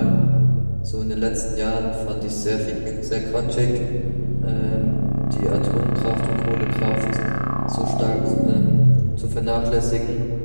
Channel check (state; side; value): inverted; both; correlation -1.00